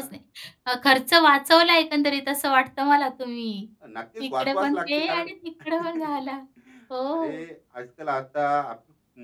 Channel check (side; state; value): both; identical; correlation 1.00